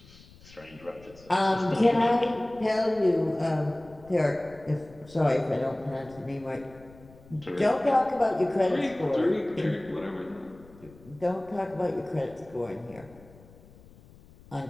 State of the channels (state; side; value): noise; left; rumble, 23 dB below the sound